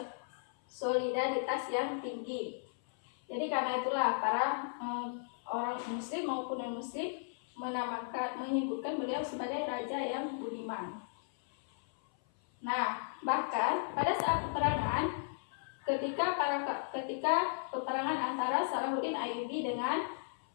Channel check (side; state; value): right; silent; 54 dB below the other